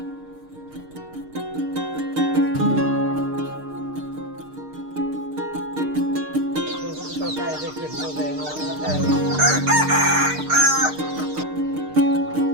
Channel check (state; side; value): late; left; 6.5 ms